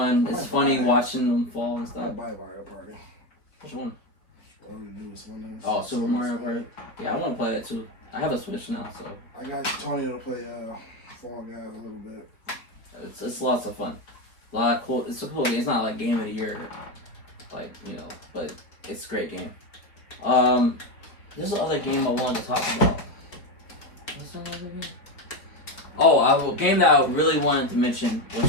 It's funny watching them fall and stuff. I buy Mario Party. Which one? Whatever the newest one is. Oh, Super Mario Party. Yeah, I want to play that too. I have a Switch now, so I got Tony to play Fall Guys a little bit. It's lots of fun. A lot of cool. It's a cool game. It's not like game of the year, like but it's a great game. There's another game I wanted to talk about. What's another game? Oh, a game that I really wanted to mention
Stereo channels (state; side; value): late; right; 4.2 ms